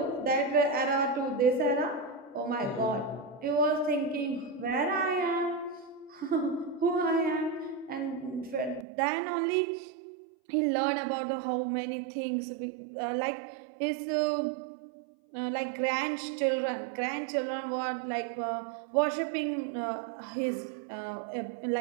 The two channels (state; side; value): drops out; left; at 8.8 s